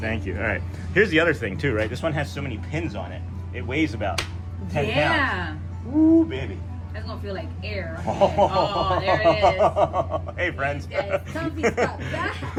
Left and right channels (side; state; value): both; identical; correlation 1.00